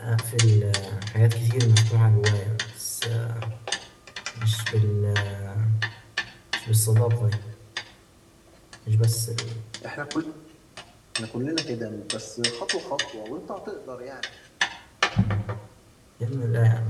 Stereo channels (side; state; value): both; identical; correlation 1.00